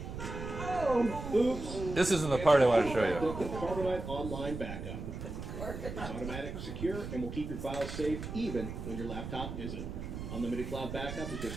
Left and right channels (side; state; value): right; noise; rumble, 7 dB below the sound